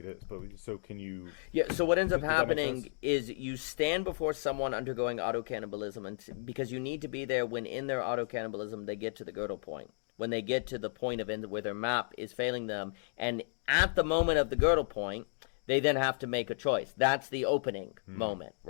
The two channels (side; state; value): right; silent; digital silence